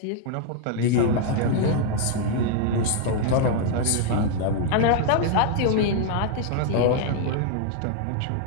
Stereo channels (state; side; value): different; both; correlation 0.00